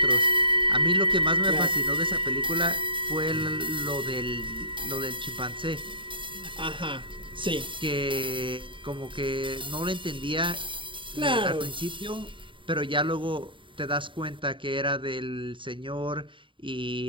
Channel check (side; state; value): left; late; 0.24 ms